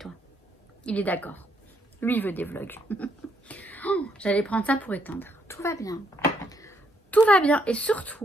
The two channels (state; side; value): normal; both; correlation 0.73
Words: Il est d'accord. Lui, il veut des vlogs. Oh, j'allais prendre ça pour éteindre. Tout va bien. Tout va bien. Et